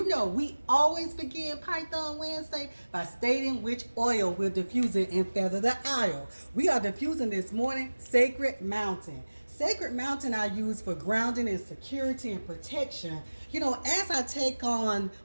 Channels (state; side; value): inverted; both; correlation -1.00